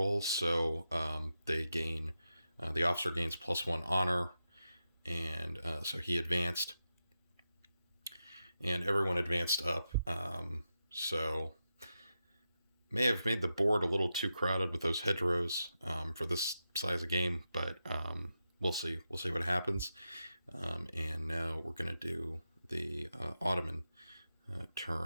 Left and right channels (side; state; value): both; inverted; correlation -0.88